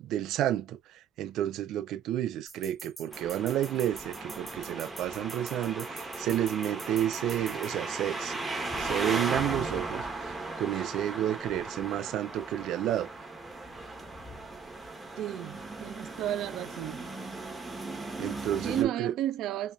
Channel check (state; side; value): quieter; left; 8.5 dB